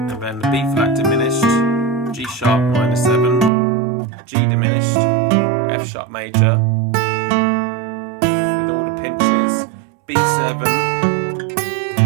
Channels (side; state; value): left; drops out; at 3.5 s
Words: then the B flat diminished, G sharp minor 7, G diminished, F sharp major, with all the pinches, B7,